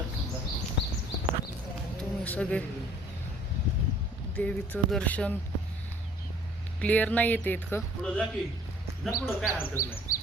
तुम्ही सगळे. देवीचं दर्शन क्लिअर नाही येते इतकं. पुढं जा की, जा पुढं, काय हरकत नाही.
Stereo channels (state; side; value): normal; both; correlation 0.56